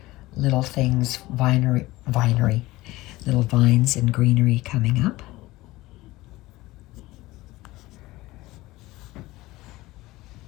little things, vinery, little vines and greenery coming up.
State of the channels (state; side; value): quieter; right; 18.8 dB